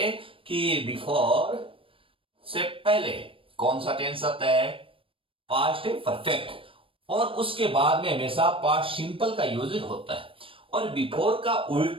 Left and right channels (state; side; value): late; left; 0.26 ms